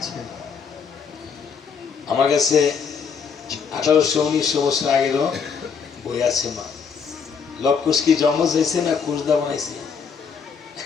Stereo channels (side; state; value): right; quieter; 6.1 dB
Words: আমার কাছে 1800-1900 বছর আগেরও বই আছে। মা লব কুশ কি যমজ হয়েছে না কুশদা বানাইছে?